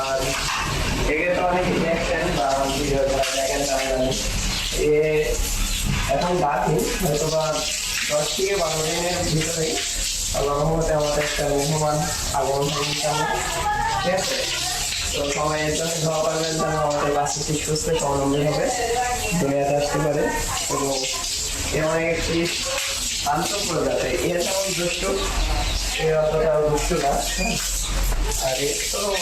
আর এগুলো তো অনেকে দেখছেন বা ভিডিও দেখেন, তারা জানেন এ এখন বাকি হয়তো বা 10 থেকে 12 দিনের ভিতরেই আল্লাহ রহমতে আমাদের একটা মেহমান আগমন হবে ইনশাআল্লাহ। ঠিক আছে, তো সবাই এর জন্য দোয়া করবেন যেন আমাদের বাচ্চাটি সুস্থ স্বাবলম্বী হবে, দুনিয়াতে আসতে পারে। এবং এমন একটি শান্ত প্রজাতি, এর যেমন দুষ্ট এর অতটাও দুষ্ট না। আর এর তো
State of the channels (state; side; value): identical; both; correlation 1.00